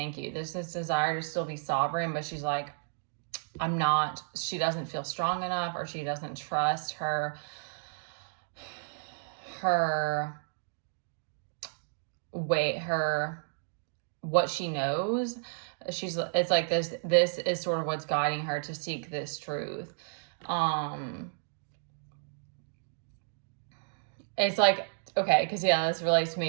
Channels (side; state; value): left; silent; digital silence